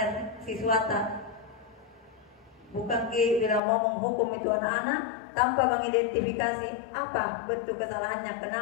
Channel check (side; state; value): right; drops out; at 3.6 s